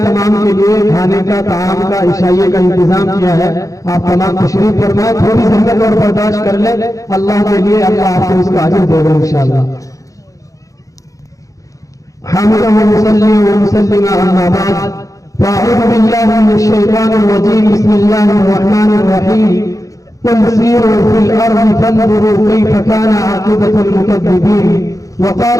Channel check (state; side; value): late; right; 0.16 ms